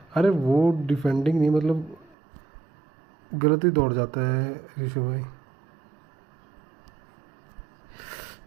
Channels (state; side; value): drops out; left; at 2.1 s